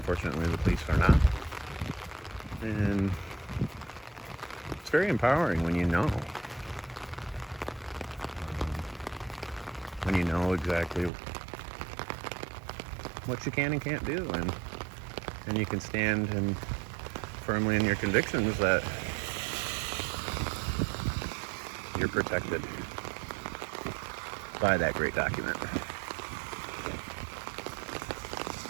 the police are not. And it's very empowering when you know. When you know exactly what you can and can't do. And you can stand and firmly in your convictions that you're protected by that great document.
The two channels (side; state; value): left; drops out; at 11.1 s